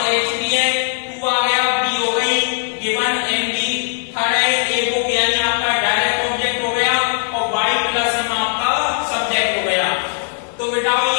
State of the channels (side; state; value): right; silent; 65 dB below the other